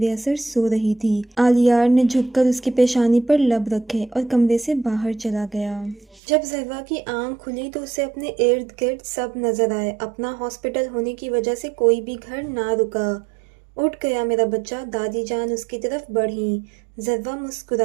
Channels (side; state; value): left; drops out; at 6.2 s